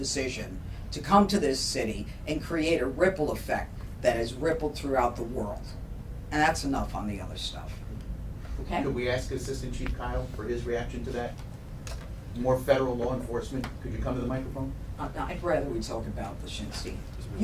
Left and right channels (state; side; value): identical; both; correlation 1.00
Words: to come to this city and create a ripple effect that has rippled throughout the world. And that's enough on the other stuff. Okay? Could we ask Assistant Chief Kyle for his reaction to that? More federal law enforcement? Could you come to the microphone? I'd rather we talk about Leszczynski.